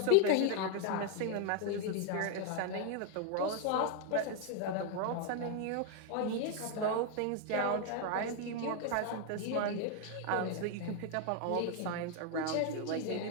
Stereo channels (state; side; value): different; both; correlation 0.00